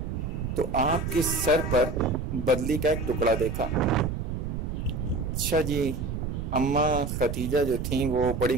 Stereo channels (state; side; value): noise; right; rumble, 4 dB below the sound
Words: تو آپ کے سر پر بدلی کا ایک ٹکڑا دیکھا. اچھا جی، اما خدیجہ جو تھیں وہ بڑی